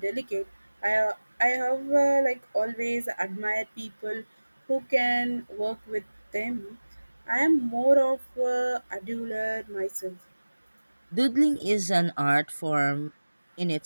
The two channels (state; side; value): inverted; both; correlation -1.00